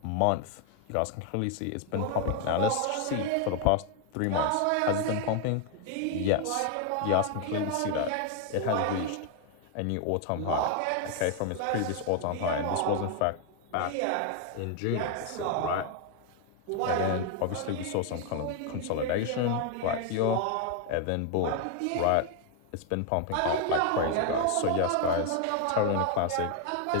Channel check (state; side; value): different; both; correlation 0.00